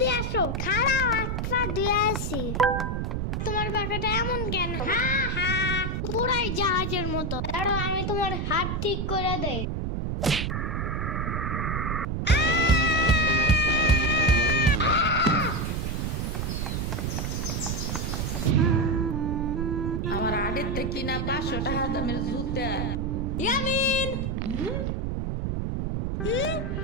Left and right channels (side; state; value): right; noise; rumble, 1 dB below the sound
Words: আসো। খাড়াও, একটা দিয়ে আসি। তোমার বাসাটা এমন কেন? হ্যাঁ হ্যাঁ, পুরাই জাহাজের মতো। দাঁড়াও, আমি তোমার হাত ঠিক করে দেই। আমার আড়ের থেকে কিনা 500 টাকা দামের জুতা। ইয়ামিন